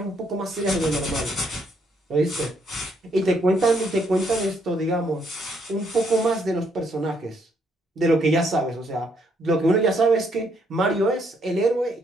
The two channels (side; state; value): both; normal; correlation 0.72